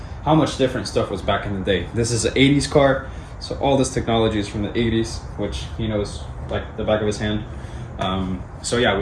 how much different stuff was back in the day. This is an 80s car, so all this technology is from the 80s, which he knows like the back of his hand. So yeah,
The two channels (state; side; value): identical; both; correlation 1.00